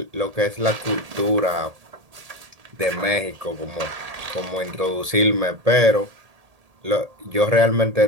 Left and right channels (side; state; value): left; late; 1.8 ms